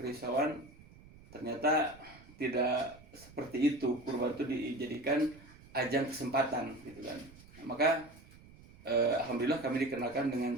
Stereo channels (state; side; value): noise; right; rumble, 22 dB below the sound